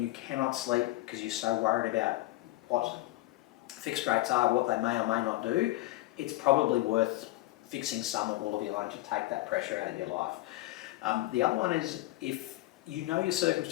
you cannot sleep because you're so worried about what fixed rates are, what they may or may not do, it's probably worth fixing some or all of your loan to take that pressure out of your life. The other one is if you know your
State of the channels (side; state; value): right; quieter; 18.3 dB